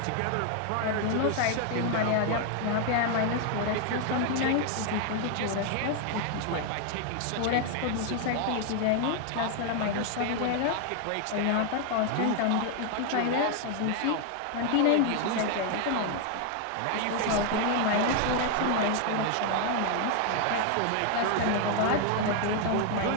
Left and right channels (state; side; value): different; both; correlation 0.00